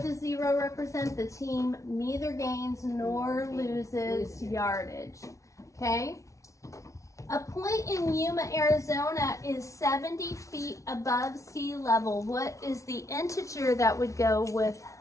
does 0 represent? The team neither gains nor loses yardage. Okay? A point in Yuma, Arizona is 70 feet above sea level. What is the integer that would go with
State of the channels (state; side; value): late; right; 0.15 ms